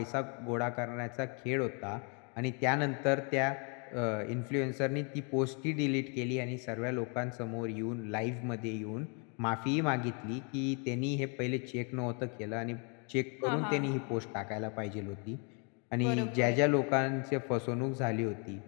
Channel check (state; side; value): quieter; right; 37.2 dB